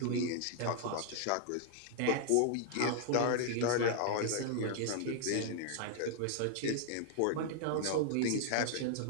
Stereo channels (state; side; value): different; both; correlation 0.00